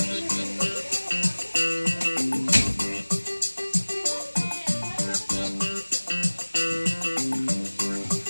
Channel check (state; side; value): inverted; both; correlation -1.00